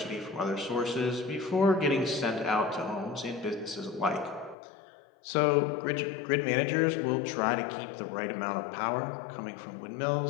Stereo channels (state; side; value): drops out; right; at 4.5 s